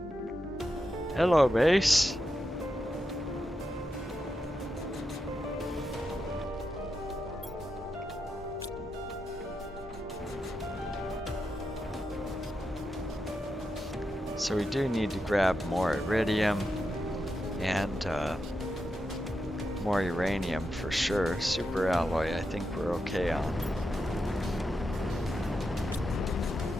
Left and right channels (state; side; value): normal; both; correlation 0.87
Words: Hello, base. So we do need to grab more iridium and more uranium for sure. Super alloy, I think we're okay on.